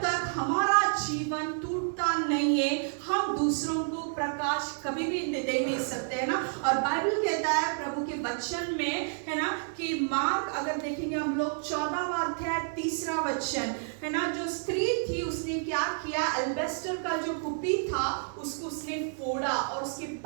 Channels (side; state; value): left; silent; digital silence